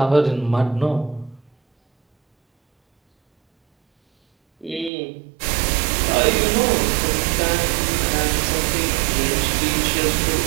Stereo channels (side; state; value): left; drops out; at 4.9 s